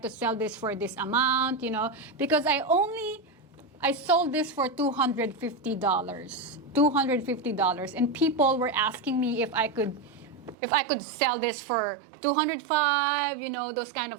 to sell this for this amount, you know? Because I sold this for $250. $250, and people were asking me if I could sell this for $205, you know, those kind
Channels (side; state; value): left; drops out; at 10.6 s